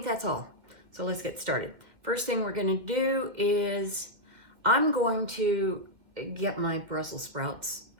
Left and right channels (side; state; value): left; late; 2.2 ms